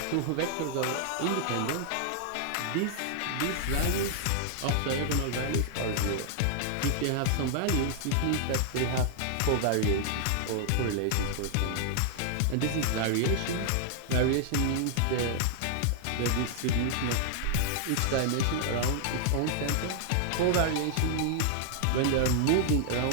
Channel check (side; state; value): both; different; correlation 0.00